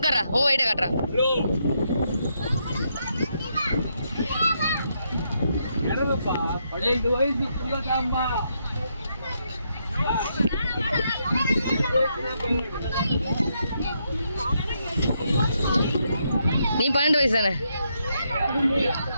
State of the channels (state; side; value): inverted; both; correlation -0.79